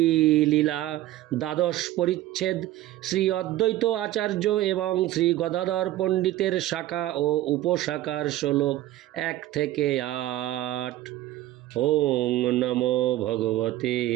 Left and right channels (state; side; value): quieter; left; 14.9 dB